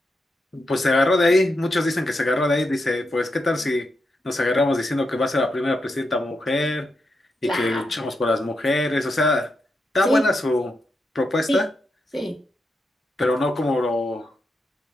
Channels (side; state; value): both; normal; correlation 0.85